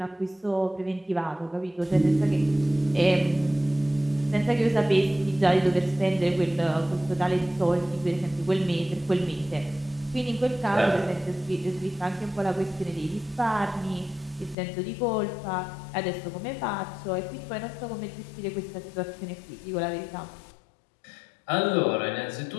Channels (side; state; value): right; drops out; at 14.6 s